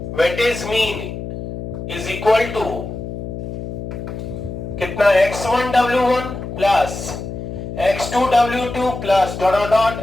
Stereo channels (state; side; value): noise; left; hum, 7 dB below the sound